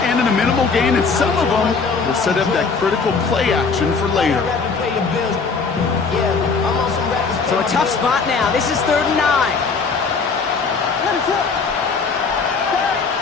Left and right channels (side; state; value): right; quieter; 4.9 dB